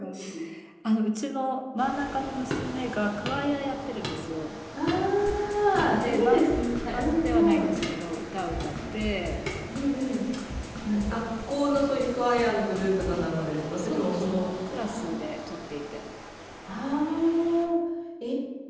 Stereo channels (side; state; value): both; identical; correlation 1.00